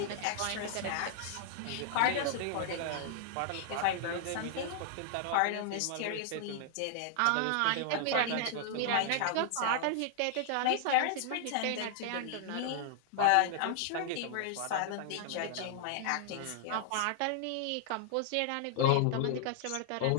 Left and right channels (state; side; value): different; both; correlation -0.01